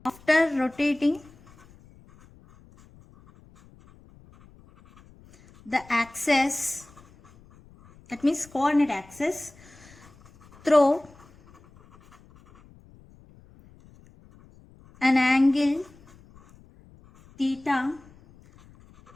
rotating the axis, that means coordinate axis, through an angle theta,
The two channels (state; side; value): noise; left; rumble, 26 dB below the sound